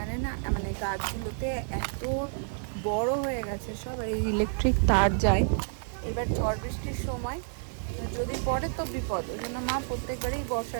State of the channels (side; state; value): left; silent; digital silence